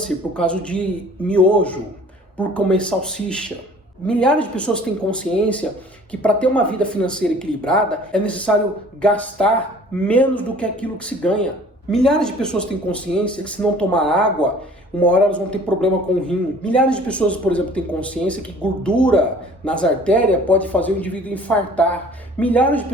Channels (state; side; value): normal; both; correlation 0.50